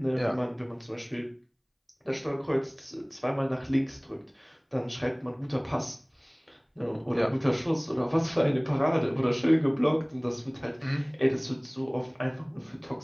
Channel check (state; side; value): identical; both; correlation 1.00